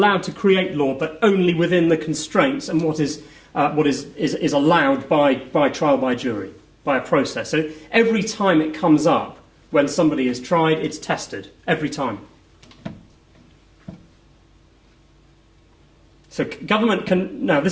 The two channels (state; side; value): identical; both; correlation 1.00